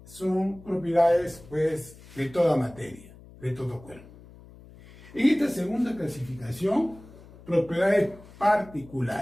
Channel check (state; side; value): noise; left; hum, 21 dB below the sound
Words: pues de toda materia, de todo cuerpo. En esta segunda clasificación, propiedades